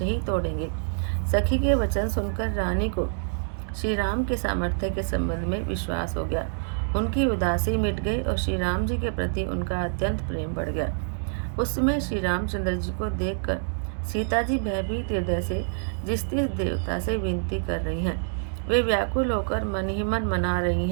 ही तोड़ेंगे। सखी के वचन सुनकर रानी को श्री राम के सामर्थ्य के संबंध में विश्वास हो गया। उनकी उदासी मिट गई और श्री राम जी के प्रति उनका अत्यंत प्रेम बढ़ गया। उस समय श्री रामचंद्र जी को देखकर सीता जी भयभीत हृदय से जिस देवता से विनती कर रही हैं, वे व्याकुल होकर मन ही मन मना रही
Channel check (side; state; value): left; silent; digital silence